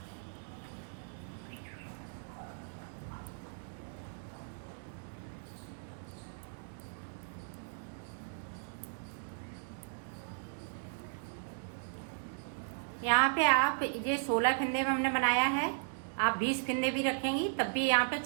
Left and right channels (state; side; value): silent; left; digital silence